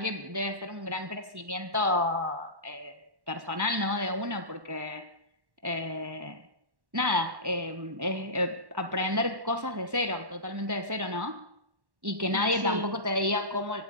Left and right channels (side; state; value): left; late; 1.1 ms